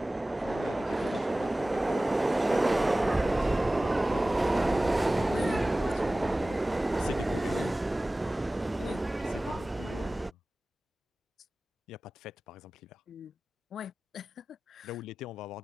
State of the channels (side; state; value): both; normal; correlation 0.97